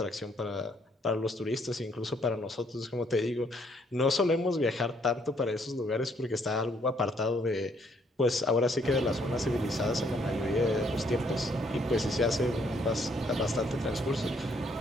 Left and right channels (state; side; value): normal; both; correlation 0.68